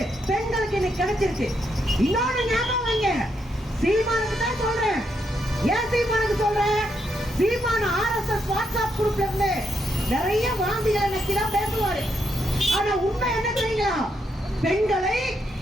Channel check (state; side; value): normal; both; correlation 0.79